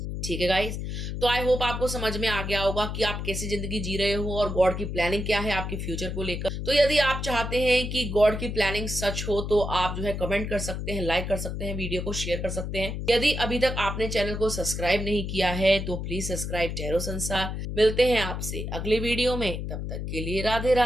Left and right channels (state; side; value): noise; left; hum, 4 dB below the sound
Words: ठीक है गाइस, तो आई होप आपको समझ में आ गया होगा कि आप कैसी जिंदगी जी रहे हो और गॉड की प्लानिंग क्या है आपके फ्यूचर को लेकर। तो यदि आप चाहते हैं कि गॉड की प्लानिंग सच हो तो आप जो है कमेंट कर सकते हैं, लाइक कर सकते हैं, वीडियो को शेयर कर सकते हैं। यदि अभी तक आपने चैनल को सब्सक्राइब नहीं किया है तो प्लीज सब्सक्राइब टैरो संसार। मिलते हैं आपसे अगले वीडियो में, तब तक के लिए राधे